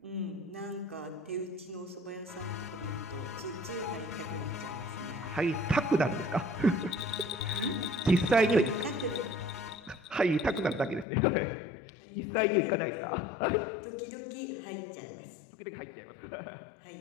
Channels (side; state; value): right; drops out; at 11.1 s